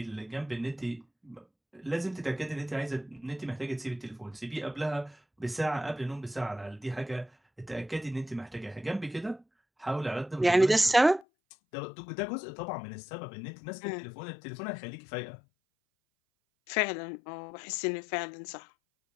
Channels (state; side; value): drops out; right; at 11.2 s